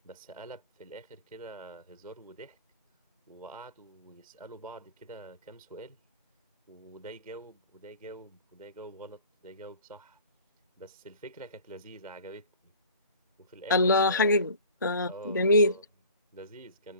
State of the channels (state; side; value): inverted; both; correlation -0.44